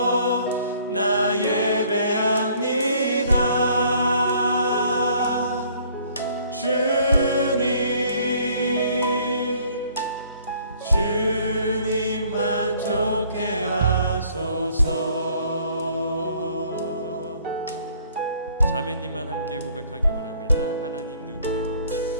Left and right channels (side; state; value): both; inverted; correlation -0.59